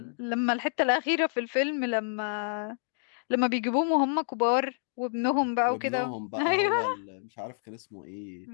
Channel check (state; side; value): silent; right; digital silence